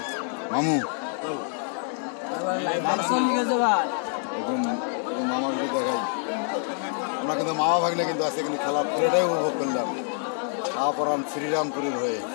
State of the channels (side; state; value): right; silent; 55 dB below the other